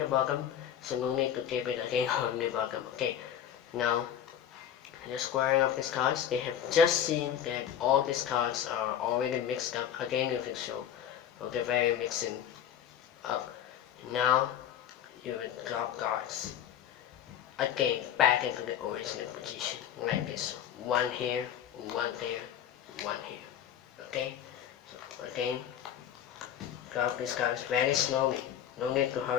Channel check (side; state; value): right; quieter; 9.8 dB